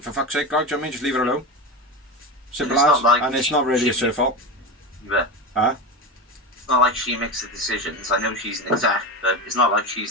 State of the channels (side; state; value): both; normal; correlation 0.21